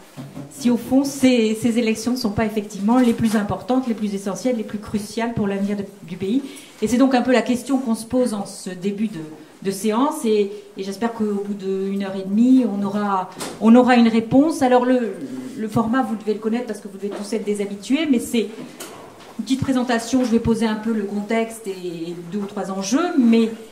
Si au fond, ces élections ne sont pas effectivement les plus importantes, les plus essentielles, les plus cruciales pour l'avenir du pays. Et c'est donc un peu la question qu'on se pose en ce début de séance. Et j'espère qu'au bout d'1h30, on aura une réponse. Alors le format, vous devez le connaître parce que vous devez tous être des habitués, mais c'est une petite présentation. Je vais poser un peu le contexte et 2 ou 3 enjeux, mais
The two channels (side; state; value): both; identical; correlation 1.00